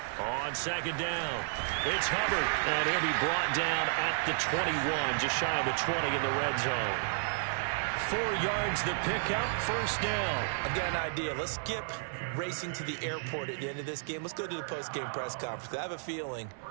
On second down, it's Hubbard, and he'll be brought down at the 21, just shy of the 20 in the red zone. 4 yards the pickup, 1st down. I've got an idea. Let's skip racing to the airport at the end of this game. Let's go to the post-game press conference. I have a feeling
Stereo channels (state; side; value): silent; left; 56 dB below the other